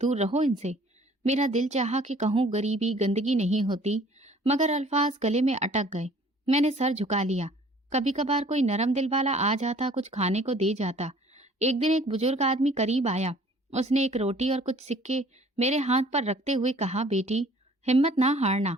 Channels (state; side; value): normal; both; correlation 0.53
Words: रहो इनसे। मेरा दिल चाहा कि कहूँ गरीबी गंदगी नहीं होती, मगर अल्फाज गले में अटक गए। मैंने सर झुका लिया। कभी कभार कोई नरम दिल वाला आ जाता, कुछ खाने को दे जाता। एक दिन एक बुजुर्ग आदमी करीब आया। उसने एक रोटी और कुछ सिक्के मेरे हाथ पर रखते हुए कहा, बेटी हिम्मत ना हारना।